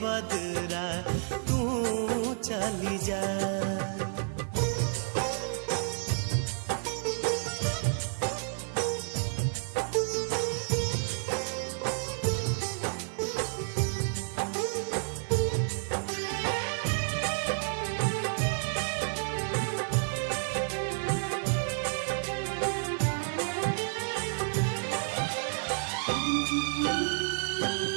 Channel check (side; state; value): left; silent; digital silence